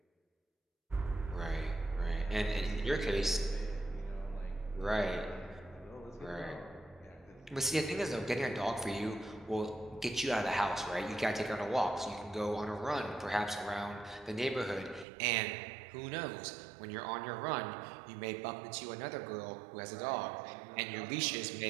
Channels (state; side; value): drops out; left; at 15.1 s